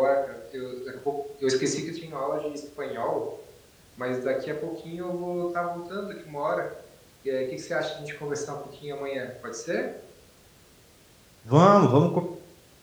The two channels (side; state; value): both; identical; correlation 1.00